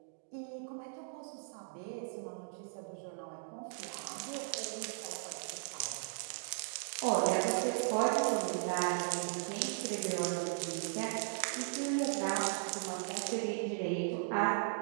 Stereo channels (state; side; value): silent; left; digital silence